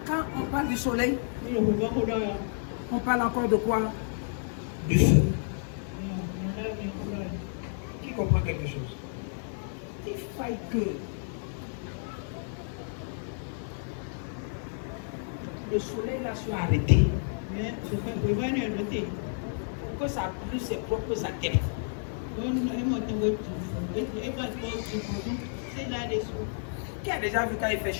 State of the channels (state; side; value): silent; right; digital silence